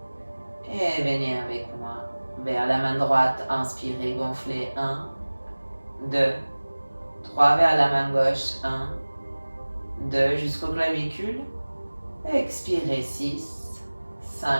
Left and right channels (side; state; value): both; inverted; correlation -1.00